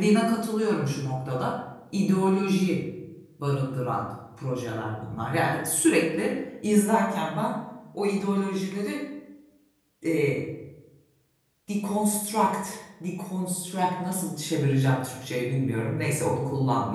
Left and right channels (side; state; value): both; identical; correlation 1.00